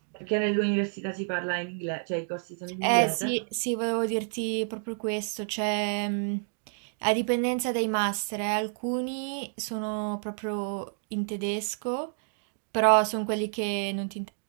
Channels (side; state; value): left; silent; digital silence